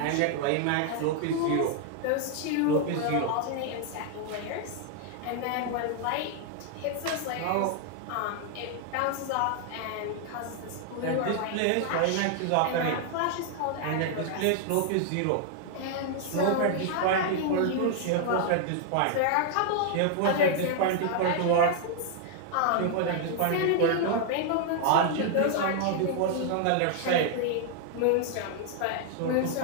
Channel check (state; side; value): different; both; correlation 0.00